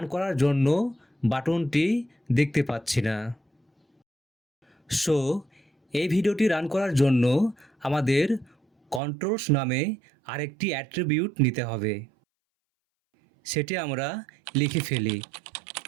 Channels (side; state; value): left; drops out; at 9.0 s